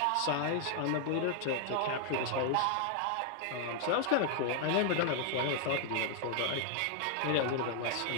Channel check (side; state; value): both; different; correlation 0.00